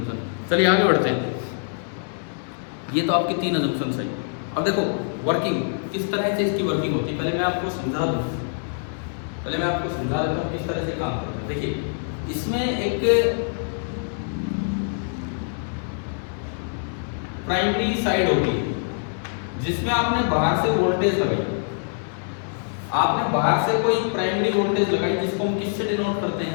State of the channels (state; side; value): silent; right; digital silence